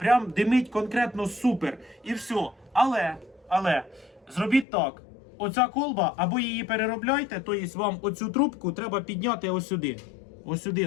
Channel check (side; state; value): right; drops out; at 4.7 s